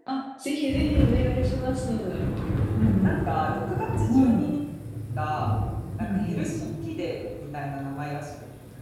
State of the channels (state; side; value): identical; both; correlation 1.00